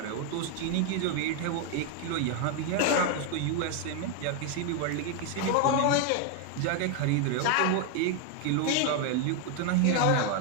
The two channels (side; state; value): both; different; correlation 0.01